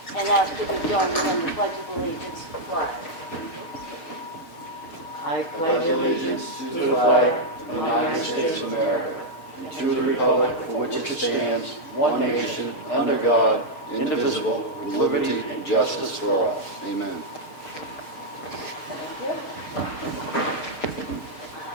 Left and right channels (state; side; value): late; right; 6.4 ms